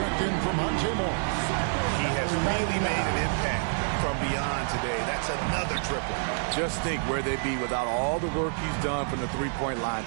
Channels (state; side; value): silent; left; digital silence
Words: in for Monte Morris. He has really made an impact from beyond today. That's another triple. Just think where they'd be without all the work he's done from the three-point line